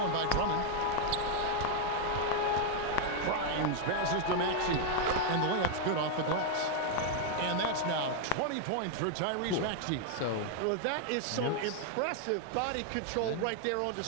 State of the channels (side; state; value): both; different; correlation 0.00